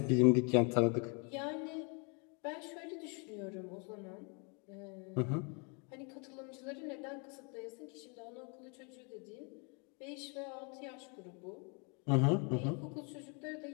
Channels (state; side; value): quieter; right; 35.4 dB